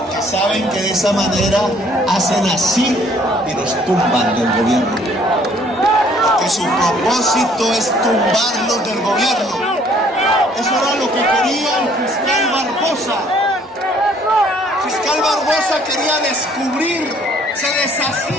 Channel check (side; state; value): both; normal; correlation 0.60